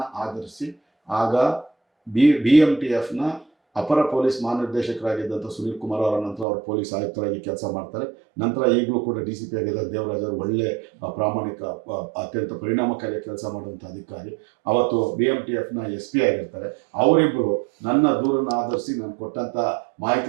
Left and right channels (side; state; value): left; drops out; at 6.5 s